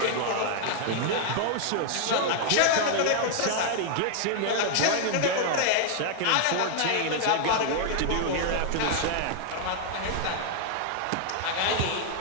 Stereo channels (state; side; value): different; both; correlation -0.01